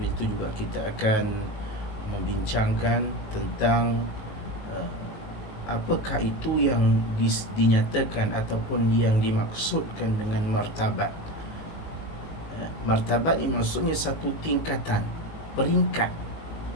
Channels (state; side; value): late; right; 19 ms